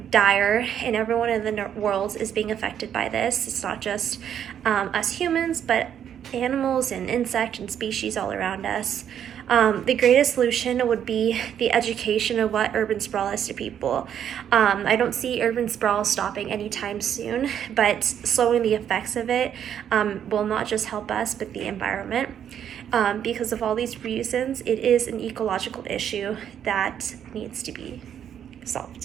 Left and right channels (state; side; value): quieter; left; 9.3 dB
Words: dire, and everyone in the world is being affected by this. It's not just us humans, but animals and insect and species all around us. The greatest solution would be the education of what urban sprawl is to people. I don't see urban sprawl stopping anytime soon, but slowing the effects of it will not just help us, but the environment. Because of all these reasons, it is an ecological issue that needs to be